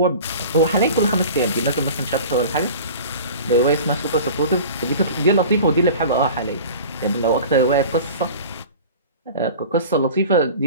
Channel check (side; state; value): both; inverted; correlation -0.39